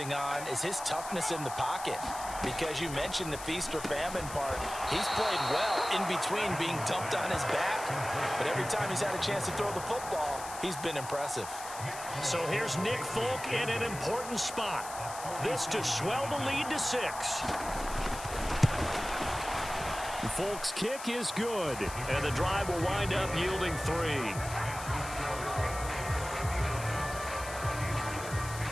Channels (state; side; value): noise; left; hiss, 11 dB below the sound